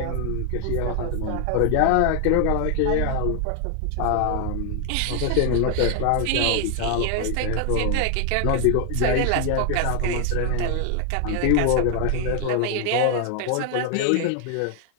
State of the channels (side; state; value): both; different; correlation 0.00